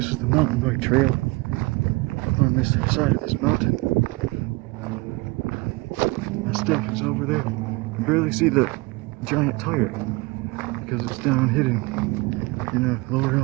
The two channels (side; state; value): left; quieter; 24.0 dB